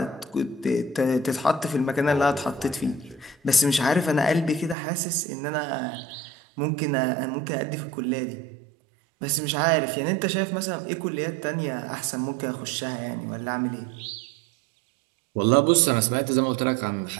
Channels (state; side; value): drops out; left; at 4.8 s